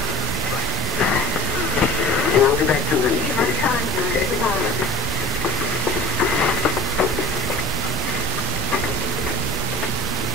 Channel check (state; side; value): normal; both; correlation 0.37